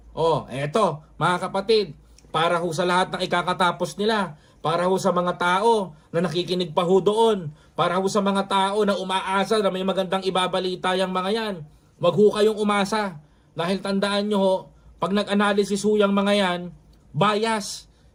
Eto, mga kapatid, para ho sa lahat ng ikakatapos nila, para ho sa mga tao na nakikinig pa ho doon, para ho sa mga tao na umaasa na may magandang ibabalita yung mga yan, wag ho kayong umasa. Dahil tandaan nyo ho, pag nag-analysis ho yung mga yan, bias,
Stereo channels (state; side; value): identical; both; correlation 1.00